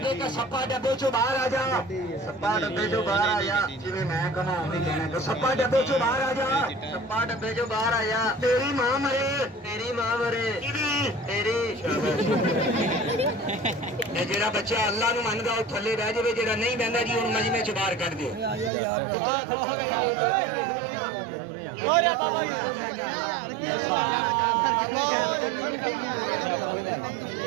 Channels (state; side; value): drops out; left; at 18.7 s